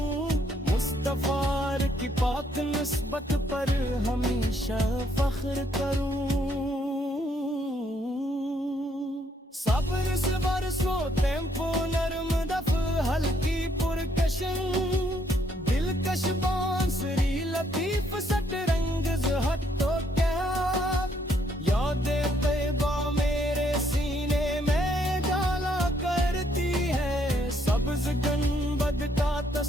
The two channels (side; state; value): both; normal; correlation 0.70